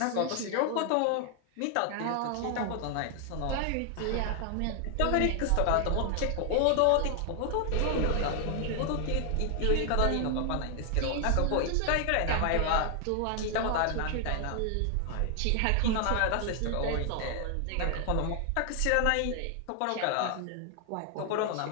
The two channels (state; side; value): different; both; correlation 0.00